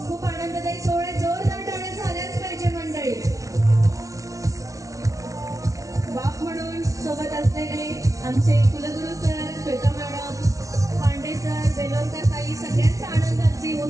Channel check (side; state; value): left; late; 0.16 ms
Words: खूप आनंददायी सोहळ्यात जोरदार टाळ्या झाल्याच पाहिजे मंडळी. बाप म्हणून सोबत असलेले आमचे कुलगुरू sir, Shweta madam, Pande sir, Belorkar ताई, सगळ्यांचा आनंदाची